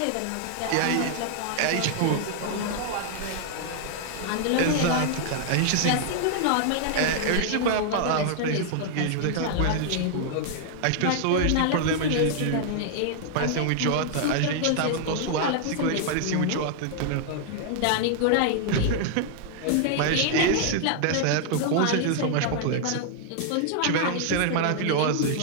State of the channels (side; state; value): both; different; correlation 0.00